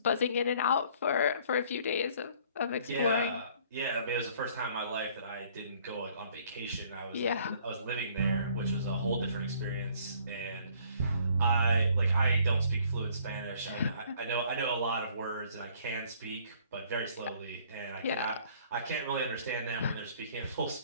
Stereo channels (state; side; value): inverted; both; correlation -0.59